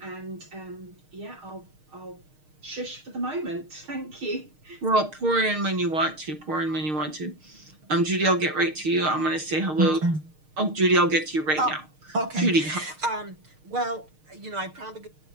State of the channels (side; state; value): left; late; 6.5 ms